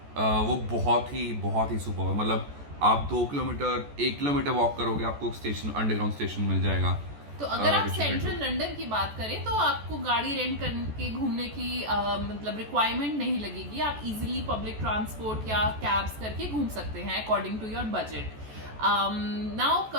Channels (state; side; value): late; left; 14 ms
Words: वो बहुत ही सुपर है। मतलब आप 1 किलोमीटर वॉक करोगे, आपको स्टेशन, अंडरग्राउंड स्टेशन मिल जाएगा। तो अगर आप सेंट्रल लंदन की बात करें तो आपको गाड़ी रेंट करके घूमने की मतलब रिक्वायरमेंट नहीं लगेगी, आप इजीली पब्लिक ट्रांसपोर्ट या कैब्स करके घूम सकते हैं according to your budget. Now